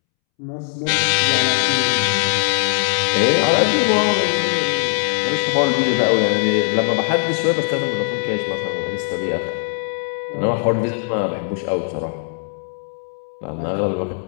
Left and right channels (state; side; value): silent; right; 66 dB below the other